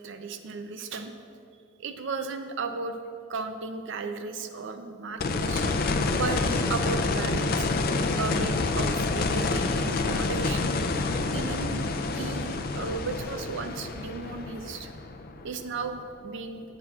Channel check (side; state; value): both; normal; correlation 0.33